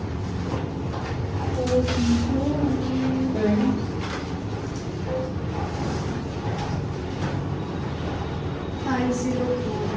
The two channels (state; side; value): identical; both; correlation 1.00